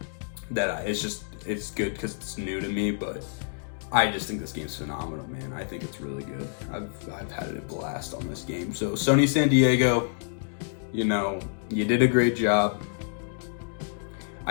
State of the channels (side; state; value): right; silent; digital silence